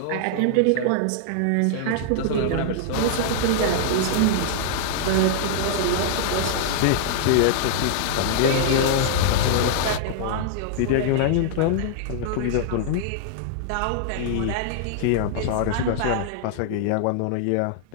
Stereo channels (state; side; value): different; both; correlation -0.01